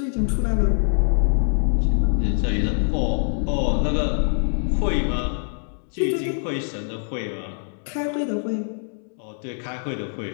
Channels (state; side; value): silent; right; digital silence